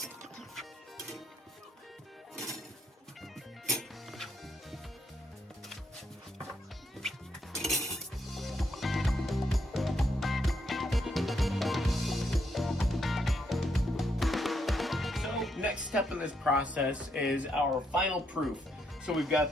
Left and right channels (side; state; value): both; normal; correlation 0.76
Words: So next step in this process is our final proof. So we've